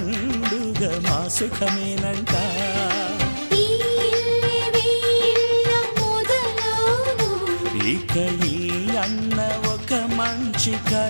మా సుఖమేనంట. ఇక ఈ అన్న ఒక మంచి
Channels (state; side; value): inverted; both; correlation -1.00